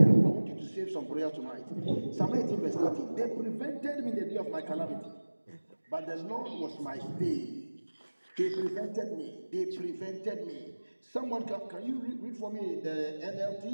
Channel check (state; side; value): inverted; both; correlation -1.00